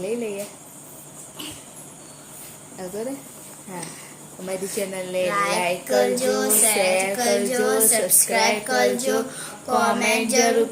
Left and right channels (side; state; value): both; identical; correlation 1.00